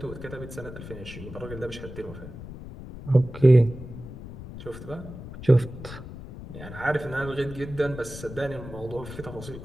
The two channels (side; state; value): left; noise; rumble, 12 dB below the sound